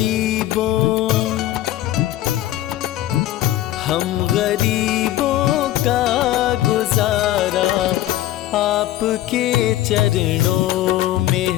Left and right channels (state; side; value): quieter; right; 14.3 dB